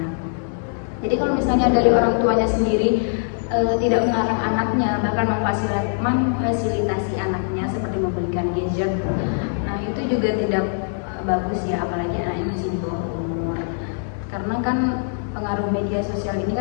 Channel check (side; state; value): right; silent; 64 dB below the other